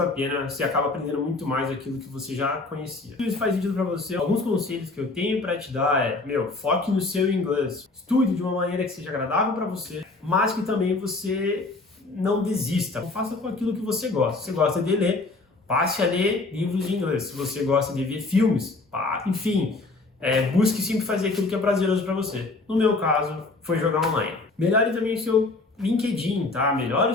pena, você acaba aprendendo muito mais aquilo que você já conhecia. Se isso faz sentido para você, alguns conselhos que eu tenho para te dar foque no seu inglês. Estude de uma maneira que seja agradável para você, mas que também você não desista. Faça com aquilo que você gosta. Se você gosta de ler, passe a ler livros em inglês. Se você gosta de ver filmes, enfim, busque sempre fazer aquilo que é prazeroso para você. No meu caso, foi jogar online. Melhore também o seu LinkedIn, tá? Melhore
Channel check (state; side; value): quieter; right; 3.4 dB